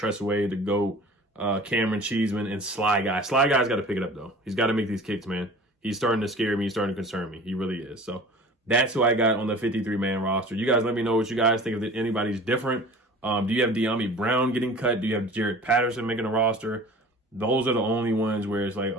Way, the GOAT, Cameron Cheeseman, and Sly Guy. Sly Guy's got to pick it up though. He's got to make these kicks, man. He's starting to scare me. He's starting to concern me. He really is. So that's who I got on the 53-man roster. You guys let me know what you guys think. If anybody's different. Do you have De'Ami Brown getting cut? Do you have Jared Patterson making a roster? Those are the only ones where it's like,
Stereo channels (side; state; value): both; normal; correlation 0.42